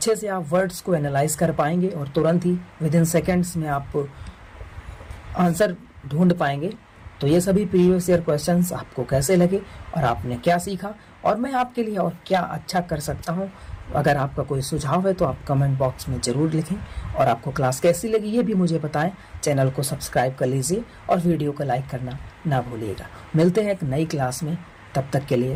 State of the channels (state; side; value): identical; both; correlation 1.00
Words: से आप वर्ड्स को एनालाइज कर पाएंगे और तुरंत ही विदिन सेकेंड्स में आप आंसर ढूंढ पाएंगे। तो ये सभी प्रीवियस ईयर क्वेश्चंस आपको कैसे लगे और आपने क्या सीखा और मैं आपके लिए और क्या अच्छा कर सकता हूँ, अगर आपका कोई सुझाव है तो आप कमेंट बॉक्स में ज़रूर लिखें। और आपको क्लास कैसी लगी ये भी मुझे बताएं। चैनल को सब्सक्राइब कर लीजिए और वीडियो को लाइक करना ना भूलिएगा। मिलते हैं एक नई क्लास में, तब तक के लिए